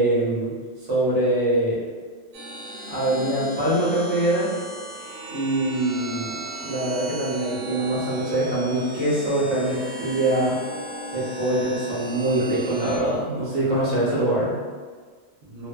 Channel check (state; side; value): normal; both; correlation 0.03